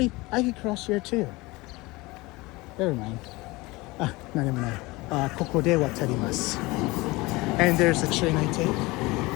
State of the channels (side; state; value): right; quieter; 22.4 dB